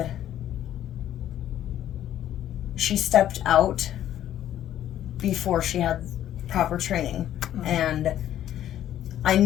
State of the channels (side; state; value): right; quieter; 11.7 dB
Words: she stepped out before she had proper training. Mm-hmm. And I